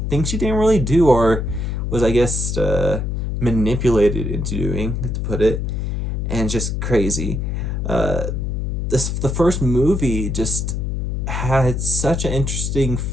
things she didn't really do, or was I guess manipulated into doing, to put it, and just crazy. The first movie just had such an interesting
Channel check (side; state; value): left; noise; hum, 1 dB below the sound